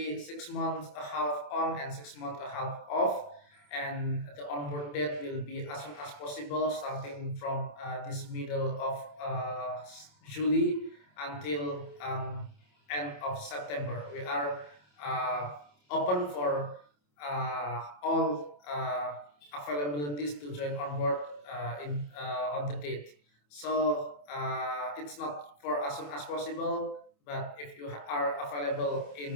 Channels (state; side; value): late; right; 27 ms